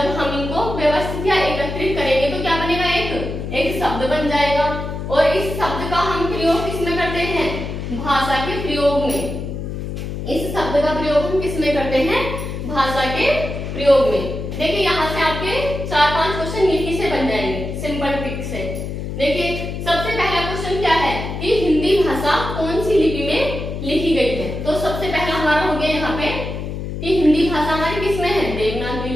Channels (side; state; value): left; noise; hum, 6 dB below the sound